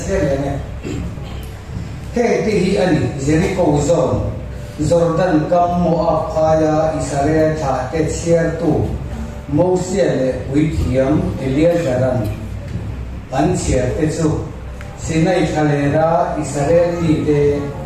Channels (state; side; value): identical; both; correlation 1.00